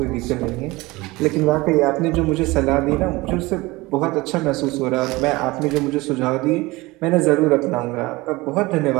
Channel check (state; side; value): quieter; left; 21.6 dB